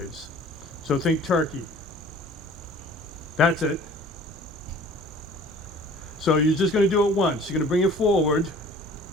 So think turkey. That's it. So you're just going to do it once. You're going to bring it forward,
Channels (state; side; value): normal; both; correlation 0.48